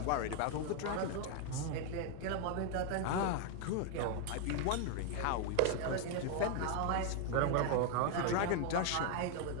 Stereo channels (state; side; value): different; both; correlation 0.00